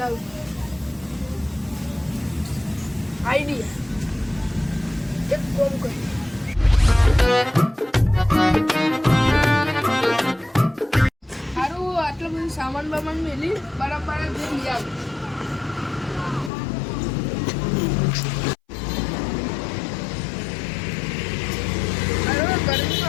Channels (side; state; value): right; drops out; at 16.5 s